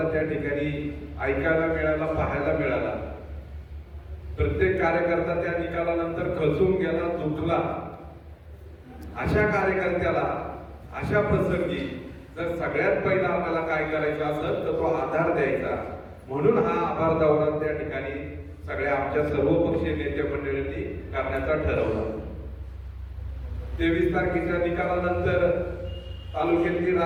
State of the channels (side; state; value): both; identical; correlation 1.00